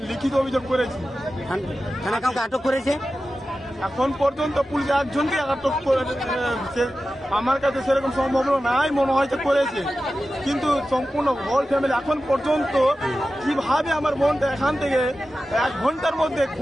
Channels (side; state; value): both; normal; correlation 0.93